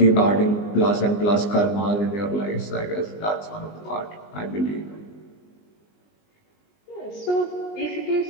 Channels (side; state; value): right; late; 19 ms